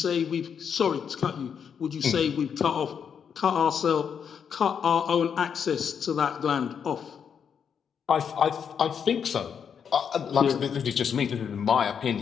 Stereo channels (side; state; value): right; quieter; 7.3 dB